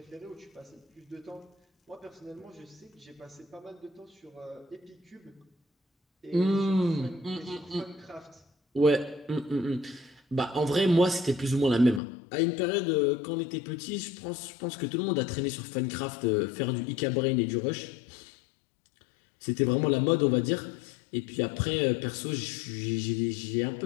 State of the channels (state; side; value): drops out; right; at 12.0 s